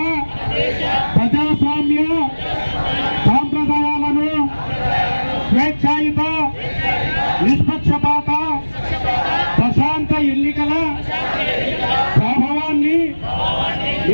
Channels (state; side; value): inverted; both; correlation -1.00